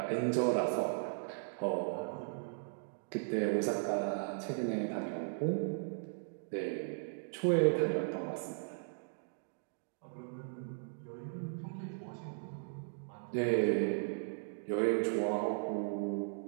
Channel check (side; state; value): left; silent; digital silence